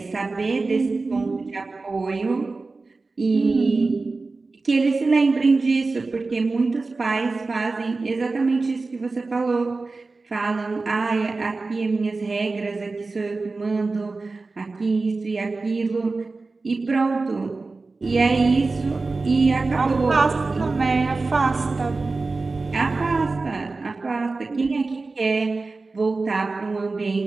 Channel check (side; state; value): left; quieter; 3.7 dB